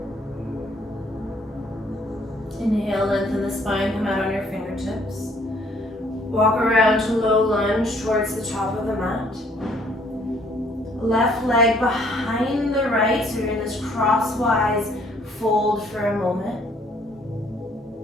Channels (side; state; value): both; normal; correlation 0.63